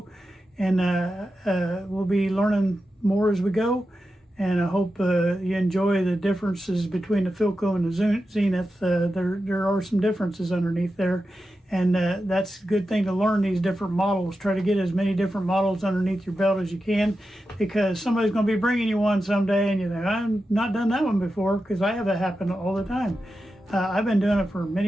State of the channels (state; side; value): normal; both; correlation 0.90